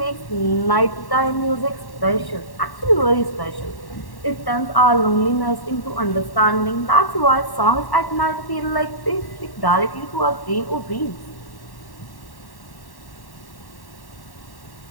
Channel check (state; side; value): late; right; 1.1 ms